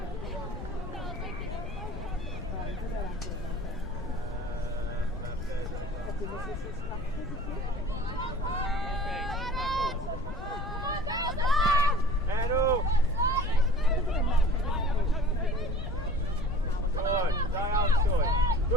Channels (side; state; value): left; noise; rumble, 11 dB below the sound